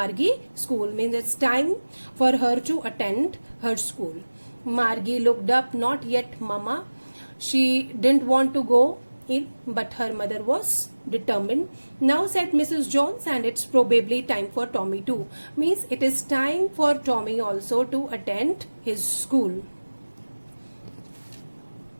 school, means it's time for her to attend her school. Margie looked up, not yet, Mama. She didn't want to go in, but her mother was determined. Now said Mrs. Jones, and it's probably time for Tommy too. Means it is time for Tommy also to attend his school.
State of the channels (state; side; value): inverted; both; correlation -1.00